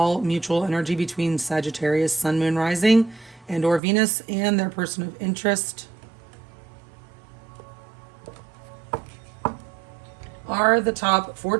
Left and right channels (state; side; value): drops out; left; at 3.8 s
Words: mutual energy between Sagittarius, Sun, Moon, Rising, and or Venus, and their person of interest. Are the top